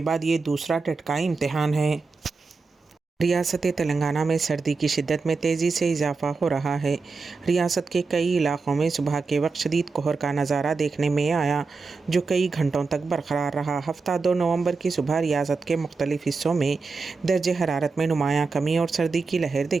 बाद ये दूसरा टेट का इम्तिहान है। रियासत तेलंगाना में सर्दी की शिद्दत में तेज़ी से इजाफा हो रहा है। रियासत के कई इलाक़ों में सुबह के वक्त शदीद कोहर का नज़ारा देखने में आया, जो कई घंटों तक बरकरार रहा। हफ्ता 2 नवंबर की सुबह रियासत के मुख्तलिफ हिस्सों में दर्जे हरारत में नुमायाँ कमी और सर्दी की लहर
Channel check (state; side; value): quieter; left; 4.3 dB